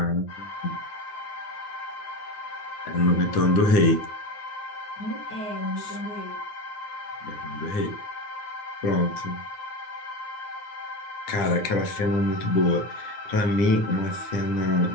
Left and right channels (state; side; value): late; right; 9.5 ms